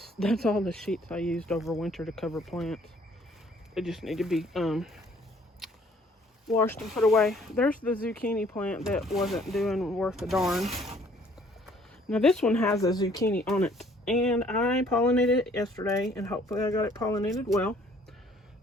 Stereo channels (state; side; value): normal; both; correlation 0.60